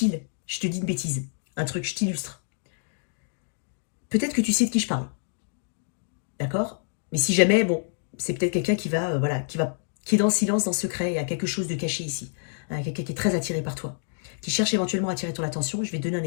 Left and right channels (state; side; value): silent; right; digital silence